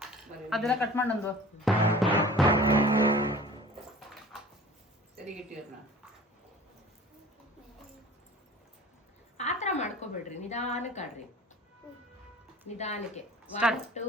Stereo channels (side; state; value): both; normal; correlation 0.44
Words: ಅದೆಲ್ಲ ಕಟ್ ಮಾಡಂದು ಸರಿಗಿಟ್ಟಿರ್ನ ಆತರ ಮಾಡ್ಕೋಬೇಡ್ರಿ, ನಿಧಾನಕ್ಕೆ ಆಡ್ರಿ, ನಿಧಾನಕ್ಕೆ. 1